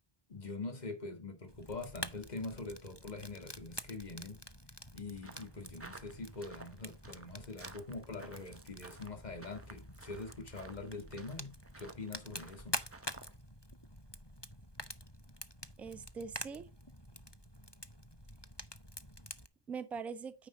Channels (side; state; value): right; late; 1.2 ms